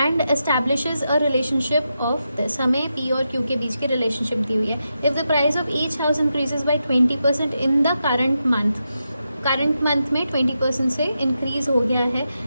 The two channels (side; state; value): both; inverted; correlation -0.87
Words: establishes a relationship of this. हमें पी और क्यू के बीच की रिलेशनशिप दी हुई है. If the price of each house increases by 20% in the current month में 20% से इंक्रीज हो गया है,